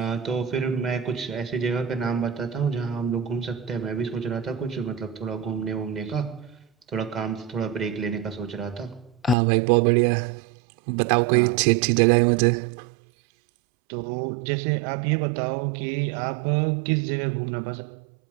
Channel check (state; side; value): drops out; left; at 9.3 s